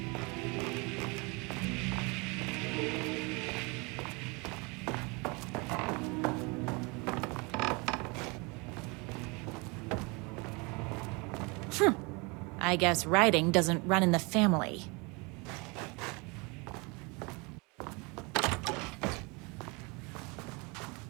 I guess writing doesn't run in the family.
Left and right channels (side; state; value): left; quieter; 28.6 dB